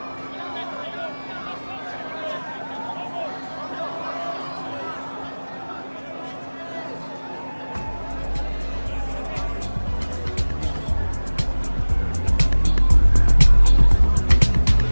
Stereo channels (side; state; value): both; inverted; correlation -1.00